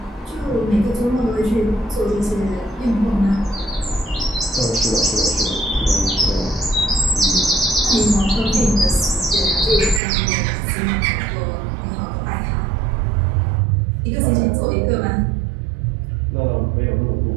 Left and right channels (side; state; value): left; drops out; at 10.0 s